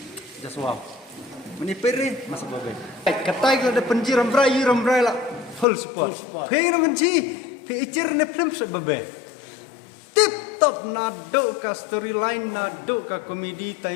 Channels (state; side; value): drops out; right; at 5.7 s